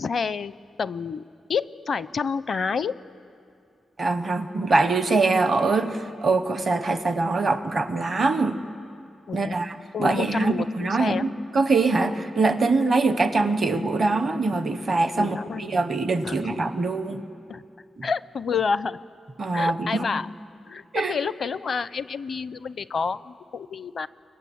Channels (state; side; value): normal; both; correlation 0.84